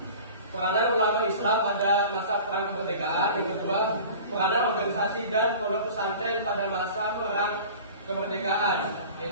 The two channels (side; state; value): both; inverted; correlation -0.40